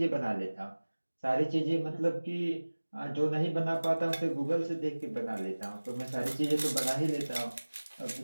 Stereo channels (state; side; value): inverted; both; correlation -1.00